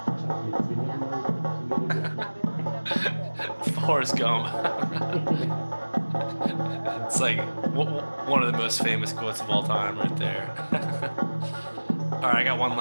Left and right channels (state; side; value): inverted; both; correlation -1.00